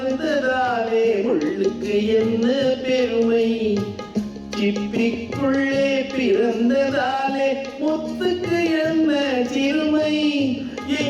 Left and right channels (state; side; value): identical; both; correlation 1.00